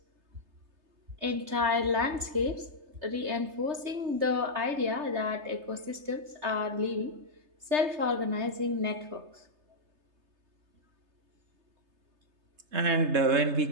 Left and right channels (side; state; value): left; late; 3.3 ms